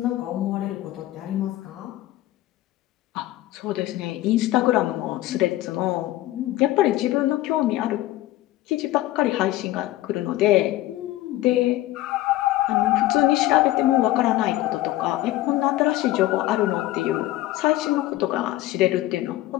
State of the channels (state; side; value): quieter; right; 15.9 dB